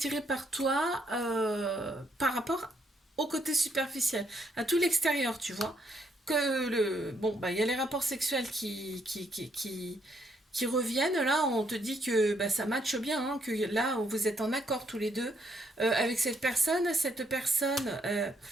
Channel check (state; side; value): normal; both; correlation 0.73